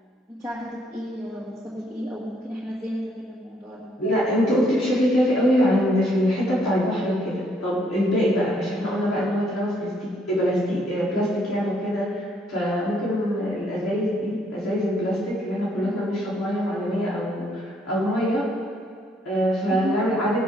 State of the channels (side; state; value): both; normal; correlation 0.69